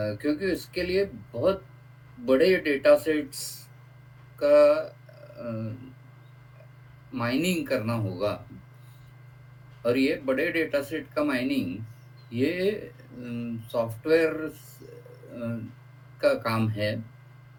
इसके लिए बहुत बड़े डेटा सेट्स का माइनिंग करना होगा। और ये बड़े डेटा सेट का माइनिंग ये सॉफ्टवेयर का काम है।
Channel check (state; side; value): identical; both; correlation 1.00